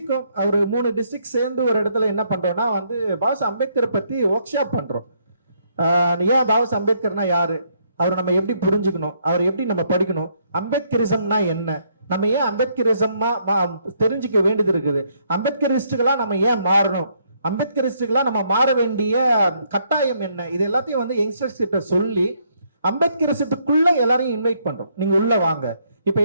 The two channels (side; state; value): both; inverted; correlation -0.71